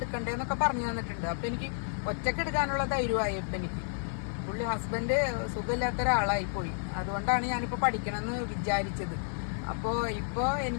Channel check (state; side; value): silent; right; digital silence